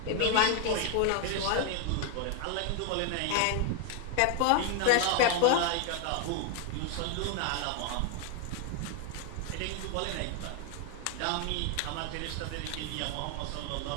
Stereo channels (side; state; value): both; different; correlation 0.00